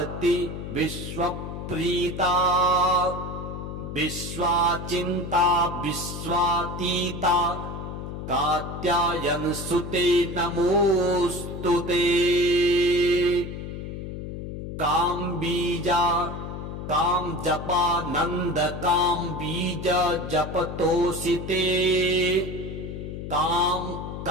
विश्वप्रीता विश्वाचिन्ता विश्वातीता कात्यायनसुते नमोऽस्तु ते काम्बीजा कामजपा नन्द काम्बीज जपतोषिते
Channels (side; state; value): left; noise; hum, 7 dB below the sound